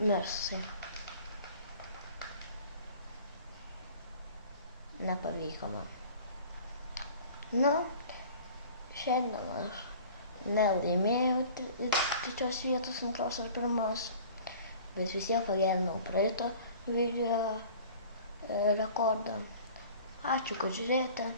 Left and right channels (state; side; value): inverted; both; correlation -0.45